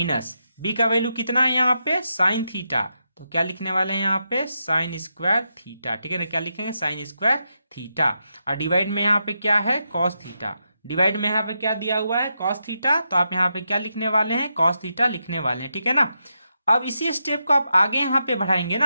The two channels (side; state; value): both; inverted; correlation -0.85